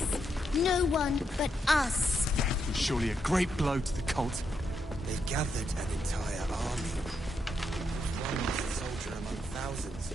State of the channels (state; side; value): normal; both; correlation 0.80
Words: No one but us. Surely a great blow to the cult. They've gathered an entire army. One lost soldier among thousands.